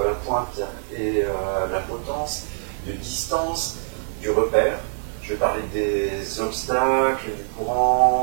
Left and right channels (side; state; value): left; silent; digital silence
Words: la pointe et la potence, de distance, du repère. Je vais parler des obstacles, du